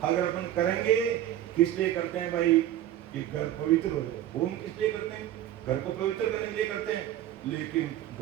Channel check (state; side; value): quieter; left; 12.3 dB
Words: अगर अपन करेंगे। किस लिए करते हैं भाई? ये घर पवित्र हो जाए। होम किस लिए करते हैं? घर को पवित्र करने के लिए करते हैं, लेकिन